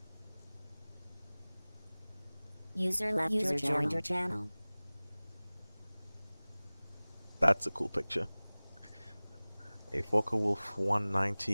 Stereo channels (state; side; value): inverted; both; correlation -1.00